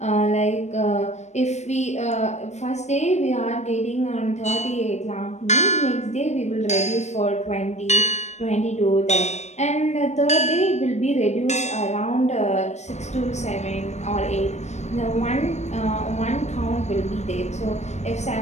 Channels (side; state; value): right; late; 0.33 ms